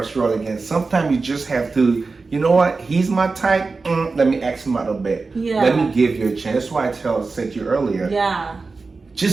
your world again? Sometimes you just have to, you know what, he's my type, let me ask him out a bit. Yeah. Let me give you a chance. That's why I said to you earlier, Yeah.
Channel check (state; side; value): quieter; left; 4.1 dB